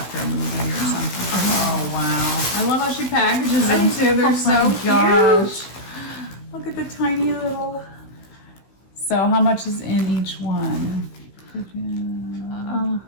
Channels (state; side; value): late; right; 16 ms